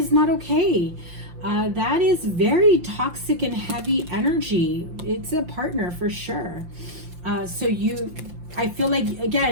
not okay. That is very toxic and heavy energy. It's a partner for sure. So I feel like,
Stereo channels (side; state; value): left; late; 5.7 ms